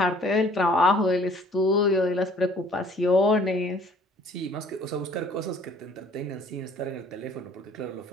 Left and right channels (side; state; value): both; normal; correlation 0.56